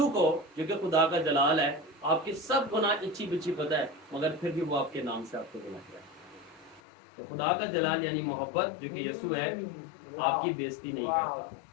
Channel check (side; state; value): right; drops out; at 6.8 s